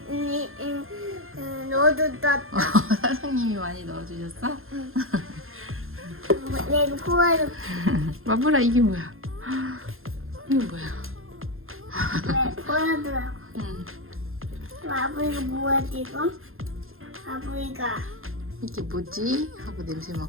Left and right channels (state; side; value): late; left; 0.61 ms